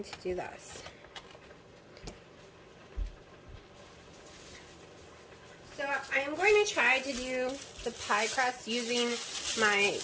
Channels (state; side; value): identical; both; correlation 1.00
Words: to do this. So I am going to try to do the pie crust using my